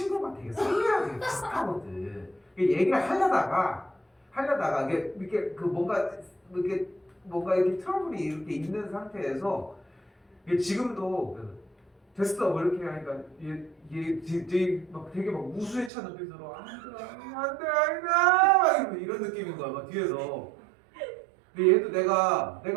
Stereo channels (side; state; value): left; drops out; at 15.9 s